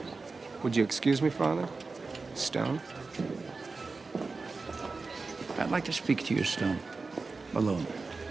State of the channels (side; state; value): left; quieter; 4.0 dB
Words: Would you excuse me, Father? Stone? I'd like to speak to you, Stone. Alone.